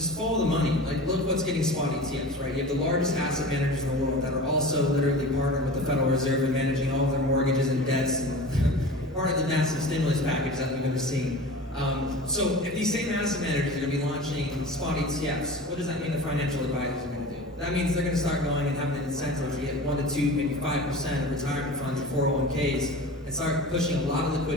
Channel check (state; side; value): normal; both; correlation 0.35